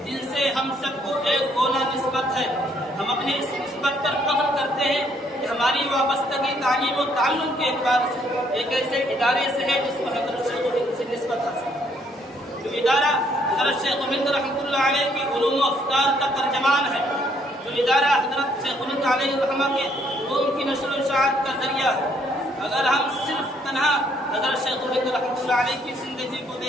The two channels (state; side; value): normal; both; correlation 0.68